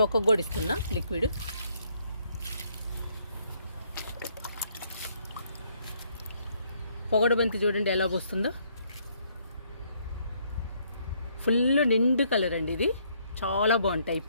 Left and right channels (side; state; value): both; inverted; correlation -0.68